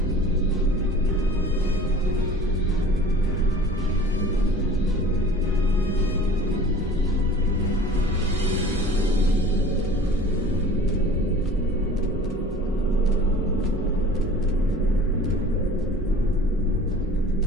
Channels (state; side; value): normal; both; correlation 0.44